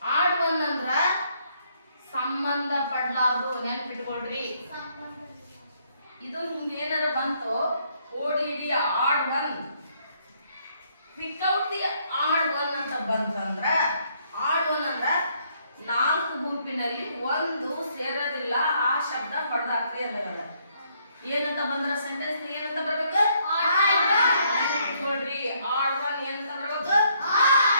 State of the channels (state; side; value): inverted; both; correlation -0.70